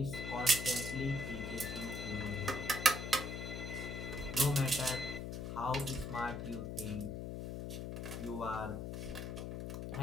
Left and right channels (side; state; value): left; noise; hum, 5 dB below the sound